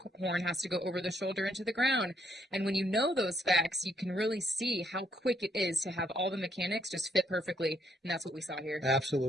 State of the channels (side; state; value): both; normal; correlation 0.72